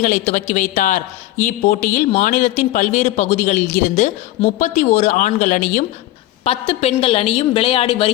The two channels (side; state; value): right; quieter; 15.7 dB